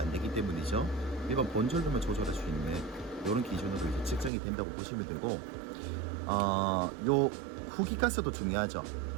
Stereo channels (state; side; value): drops out; left; at 4.3 s